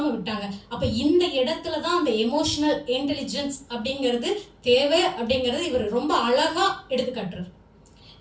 விட்டாங்க. அப்ப இந்த இடத்துலதான் அந்த எமோஷனல் இன்டெலிஜென்ஸ் அப்படிங்கிறது தேவை அப்படிங்கறது இவர் ரொம்ப அழகா எடுத்துக்காட்டுறாரு.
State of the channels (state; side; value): identical; both; correlation 1.00